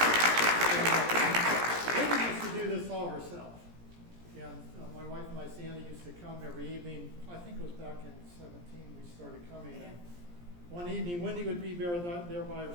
Wendy used to do this all herself. And my wife and I, Sandy, used to come every evening. I think it was back in 17 we started coming. And one evening, Wendy would be there by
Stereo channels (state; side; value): late; left; 17 ms